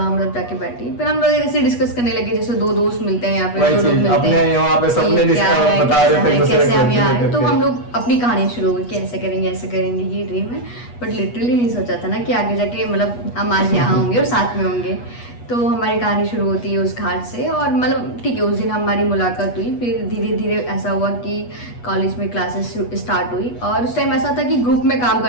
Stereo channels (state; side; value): late; right; 8.3 ms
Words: जाके बैठी, फिर हम लोग ऐसे डिस्कस करने लगे जैसे दो दोस्त मिलते हैं, यहाँ पे दो लोग मिलते हैं, अपने यहाँ पे सबने बता रहे थे कैसे हम यहाँ। तो हम लोग अपनी कहानी शुरू हुई कि ऐसे करेंगे ऐसे करेंगे, ये ड्रीम है। बट लिटरली नहीं सोचा था ना कि आगे जाके मतलब हम आज यहाँ होंगे और साथ में होंगे। तो हमारी कहानी शुरू होती है उस घाट से, और मतलब ठीक है उस दिन हमारी मुलाकात हुई। फिर धीरे धीरे ऐसा हुआ कि कॉलेज में क्लासेस स्टार्ट हुई, और उस टाइम ऐसा था कि ग्रुप में काम